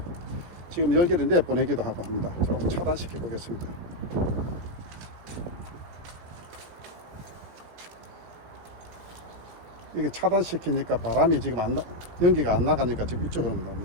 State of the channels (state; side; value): late; left; 18 ms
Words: 지금 열기를 내보내기도 하고 합니다. 조금 차단시켜 보겠습니다. 이게 차단시키니까 바람이 지금 연기가 안 나가니까 지금 이쪽으로